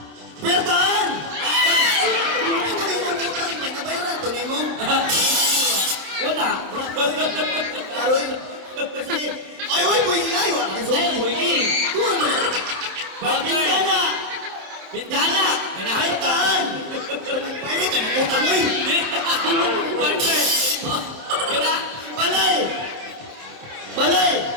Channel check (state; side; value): late; left; 27 ms